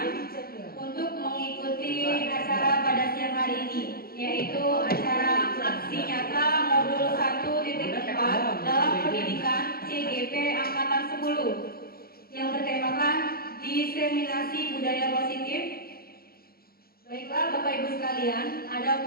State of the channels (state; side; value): late; right; 0.44 ms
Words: untuk mengikuti acara pada siang hari ini, yaitu acara aksi nyata modul 1.4 dalam pendidikan CGP Angkatan 10 yang bertemakan diseminasi budaya positif. Baiklah Bapak Ibu sekalian,